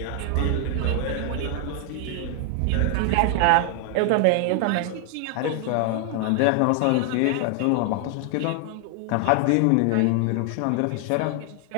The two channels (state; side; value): different; both; correlation 0.00